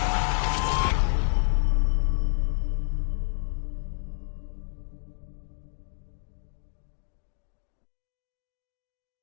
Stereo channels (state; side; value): silent; right; digital silence